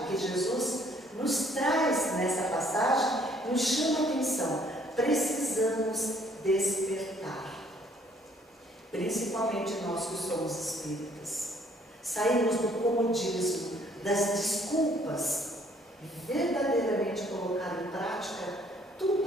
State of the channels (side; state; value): both; normal; correlation 0.62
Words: que Jesus nos traz nessa passagem nos chama a atenção. Precisamos despertar, principalmente nós que somos espíritas, sairmos do comodismo, das desculpas e verdadeiramente colocar em prática